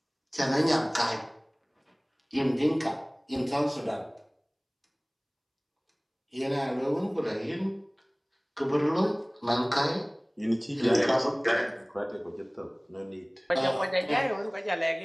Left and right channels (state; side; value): identical; both; correlation 1.00